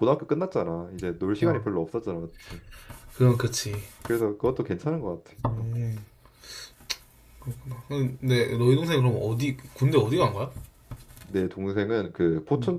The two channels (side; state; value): both; identical; correlation 1.00